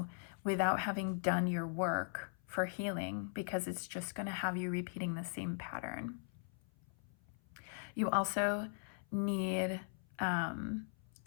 without having done your work for healing, because it's just going to have you repeating the same pattern. You also need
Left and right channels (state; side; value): silent; right; 51 dB below the other